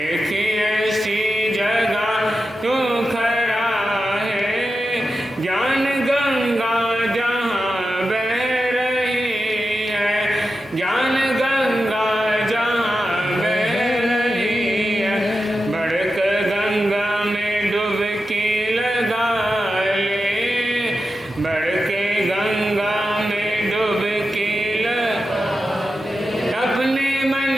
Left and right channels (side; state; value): both; normal; correlation 0.91